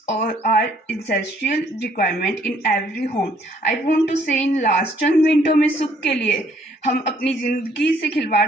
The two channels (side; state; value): both; normal; correlation 0.64